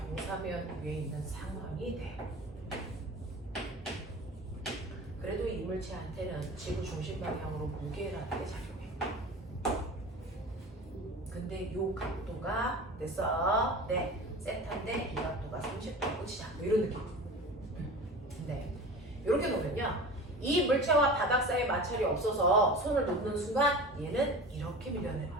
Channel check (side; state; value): both; normal; correlation 0.35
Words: 위에 있는 상황이 돼. 그래도 이 물체한테는 지구 중심 방향으로 무게라는 게 작용해. 근데 요 각도가 됐어. 네. 세타인데 이 각도가 30도고 치자. 뭐 이런 느낌. 근데 이렇게 놓으면요. 이 물체와 바닥 사이에 마찰이 없어서 손을 놓는 순간 얘는 이렇게